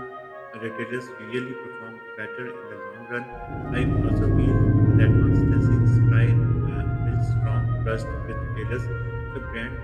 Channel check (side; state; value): both; identical; correlation 1.00